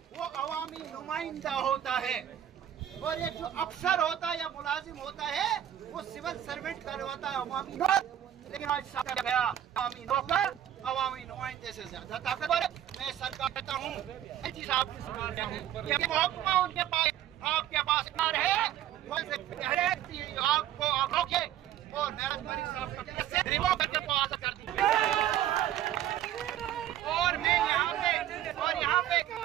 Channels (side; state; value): left; quieter; 11.3 dB